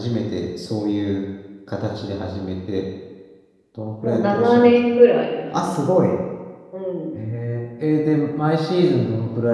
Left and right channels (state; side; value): identical; both; correlation 1.00